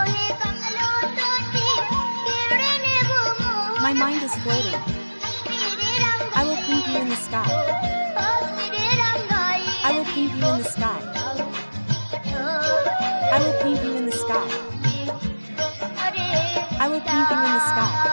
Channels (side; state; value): both; inverted; correlation -1.00